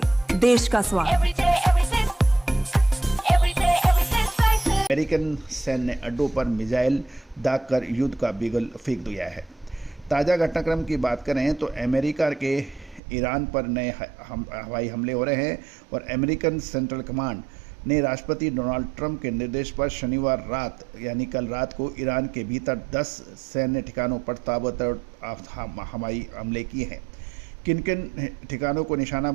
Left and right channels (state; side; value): drops out; left; at 13.0 s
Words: देश का स्वाद। अमेरिकन सैन्य ने अड्डों पर मिसाइल दागकर युद्ध का बिगुल फेंक दिया है। ताज़ा घटनाक्रम की बात करें तो अमेरिका के ईरान पर नए हवाई हमले हो रहे हैं और अमेरिकन सेंट्रल कमांड ने राष्ट्रपति डोनाल्ड ट्रंप के निर्देश पर शनिवार रात यानी कल रात को ईरान के भीतर 10 सैन्य ठिकानों पर ताबड़तोड़ हवाई हमले किए हैं। किन किन ठिकानों को निशाना